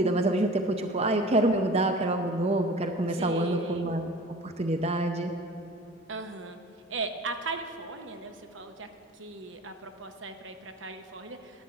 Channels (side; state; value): both; normal; correlation 0.41